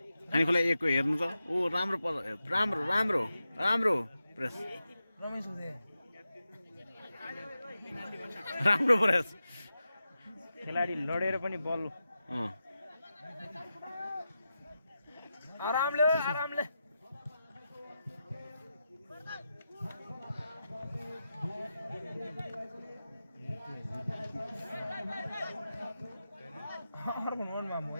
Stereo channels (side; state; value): both; inverted; correlation -0.90